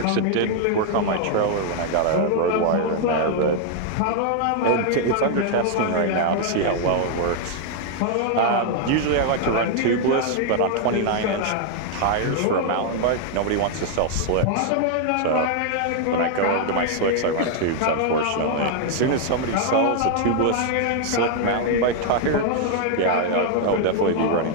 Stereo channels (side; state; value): both; different; correlation 0.00